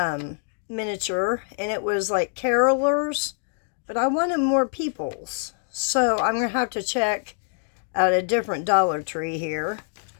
miniature, and it was like carolers, but I wanted more peoples, so I'm gonna have to check out a different Dollar Tree here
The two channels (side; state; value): right; silent; digital silence